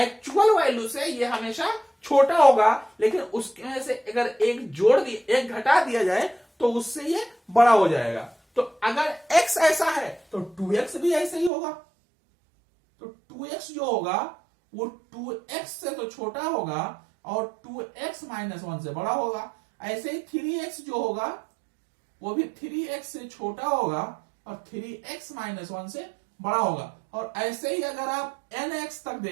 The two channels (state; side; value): drops out; left; at 11.5 s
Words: एक्चुअल वैल्यू से ये हमेशा छोटा होगा, लेकिन उसमें से अगर एक घटा दिया जाए तो उससे ये बड़ा हो जाएगा। तो अगर x ऐसा है तो 2x भी ऐसा ही होगा। तो 2x जो होगा वो 2x से तो छोटा होगा और 2x माइनस 1 से बड़ा होगा। ऐसे ही 3x जो होगा वो भी 3x से छोटा होगा और 3x माइनस 1 से बड़ा होगा। और ऐसे ही अगर आप nx तक